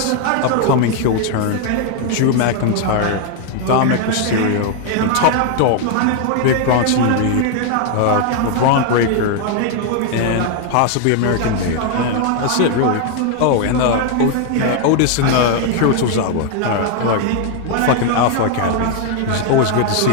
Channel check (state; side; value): different; both; correlation 0.01